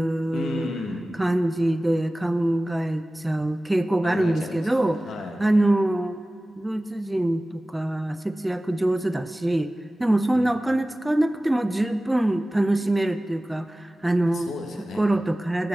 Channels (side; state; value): both; normal; correlation 0.97